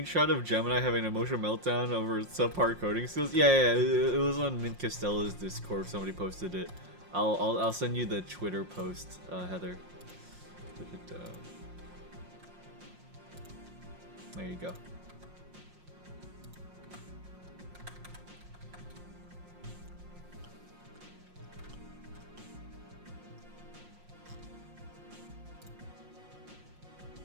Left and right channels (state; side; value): late; left; 5.6 ms